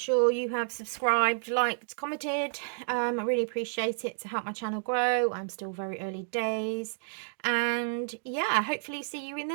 you have subscribed, liked, commented. I really appreciate it to help my channel grow. I'm still very early days. And yeah, hopefully see you in the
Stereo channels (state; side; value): silent; left; digital silence